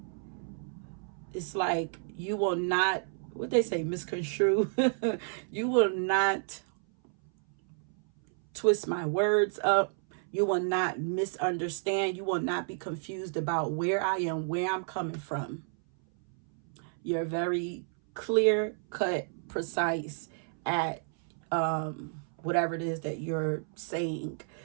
It's like you will not, what they say, misconstrue. You will not twist my words up. You will not misunderstand. You will not be confused about where I am, where I'm coming from. You're very clear cut, precise at whatever it is that you're saying.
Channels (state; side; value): silent; left; 57 dB below the other